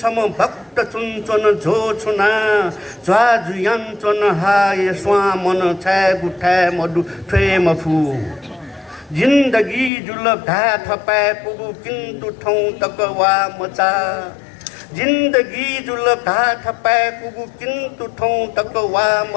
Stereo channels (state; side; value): drops out; right; at 9.9 s